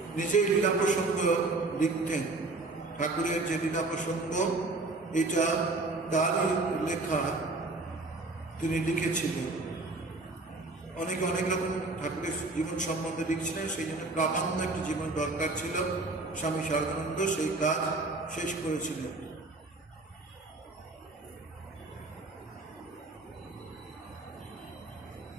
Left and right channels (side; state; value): left; quieter; 3.3 dB